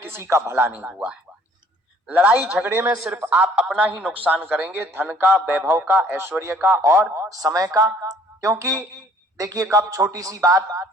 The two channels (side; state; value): both; normal; correlation 0.58